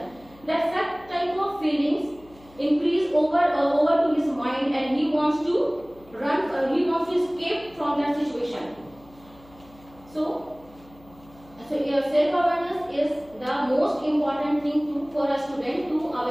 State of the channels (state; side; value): noise; left; hum, 25 dB below the sound